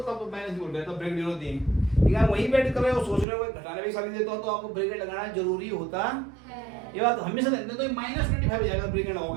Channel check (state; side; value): drops out; left; at 3.2 s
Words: माइनस बोल रहे, तब ब्रैकेट जरूर देंगे। यार वही बैठ कर रहे हो, सोच रहे हो घटाने भी सारी देता हो, तो आपको ब्रैकेट लगाना जरूरी होता है, ये बात हमेशा देते, तो -25 हो जाएगा ब्रैकेट